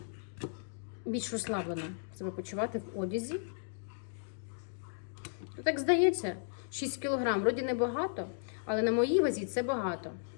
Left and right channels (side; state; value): right; silent; digital silence